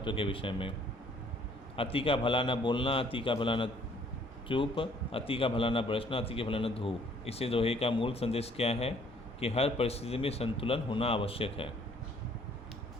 के विषय में। अति का भला न बोलना, अति का भला न चुप, अति का भला न बरसना, अति का भला न धूप। इसे दोहे का मूल संदेश क्या है कि हर परिस्थिति में संतुलन होना आवश्यक है।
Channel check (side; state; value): both; normal; correlation 0.60